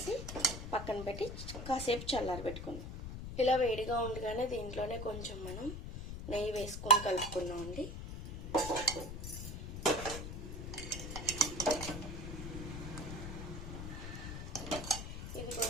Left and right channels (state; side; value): noise; left; rumble, 7 dB below the sound